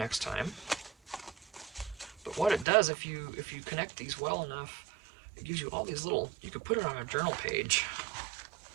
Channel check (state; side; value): drops out; left; at 2.7 s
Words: time. But what it does, if you connect these well enough, it gives you all these little, you could put it on a journal page.